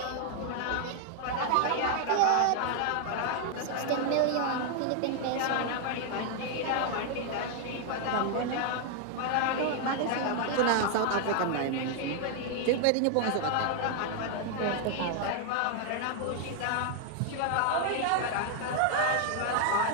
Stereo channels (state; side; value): different; both; correlation 0.00